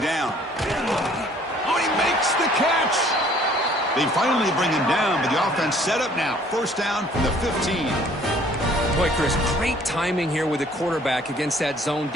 down. Oh, he makes the catch. They finally bring him down, but the offense set up now. First down from the 15. Boy, Chris, great timing here with the quarterback against that zone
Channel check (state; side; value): normal; both; correlation 0.57